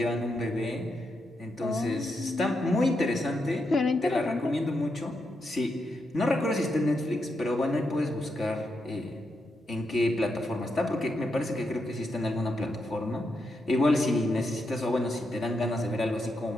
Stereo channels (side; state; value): both; normal; correlation 0.83